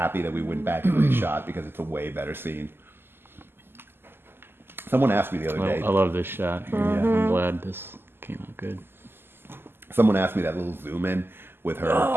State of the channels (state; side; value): late; left; 0.11 ms